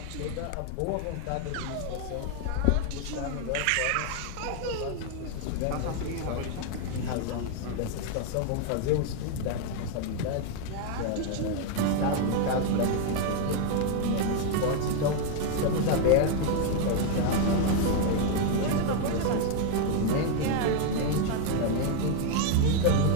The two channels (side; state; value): both; different; correlation 0.00